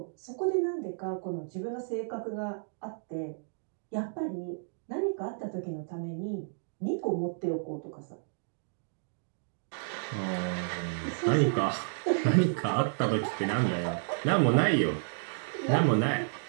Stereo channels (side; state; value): left; silent; digital silence